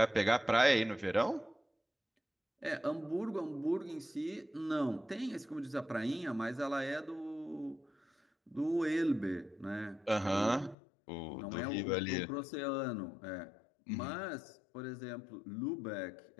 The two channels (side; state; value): right; drops out; at 10.8 s